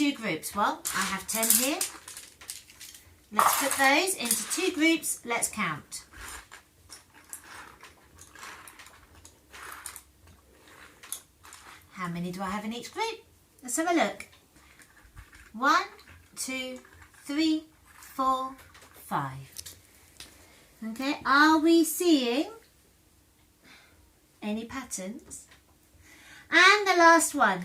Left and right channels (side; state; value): both; identical; correlation 1.00